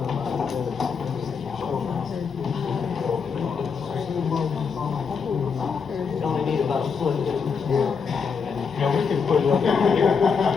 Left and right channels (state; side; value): quieter; right; 5.8 dB